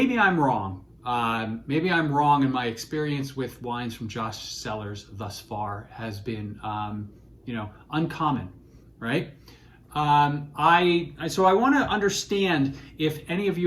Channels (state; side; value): identical; both; correlation 1.00